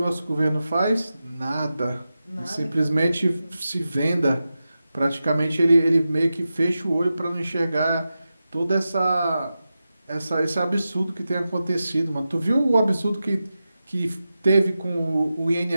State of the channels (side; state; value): both; inverted; correlation -0.92